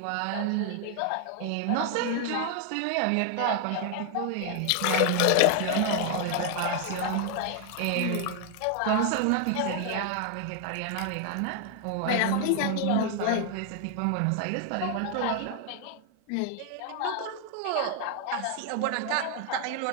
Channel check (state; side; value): different; both; correlation 0.00